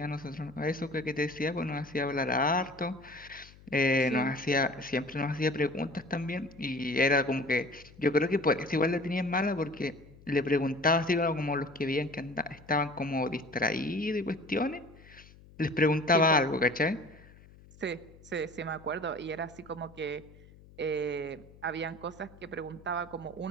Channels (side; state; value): left; noise; hum, 23 dB below the sound